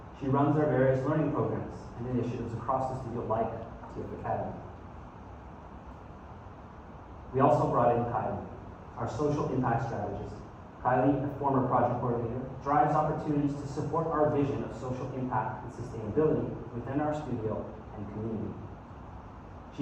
She runs our various learning programs and initiatives across the studio like TF Academy. We also brought in Kylie, our social impact strategist. Kylie, a former project coordinator, drives opportunities to support our vision of social impact and sustainability within our studio and community.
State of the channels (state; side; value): identical; both; correlation 1.00